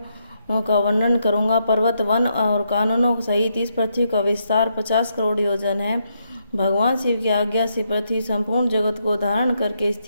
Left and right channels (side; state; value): both; inverted; correlation -0.79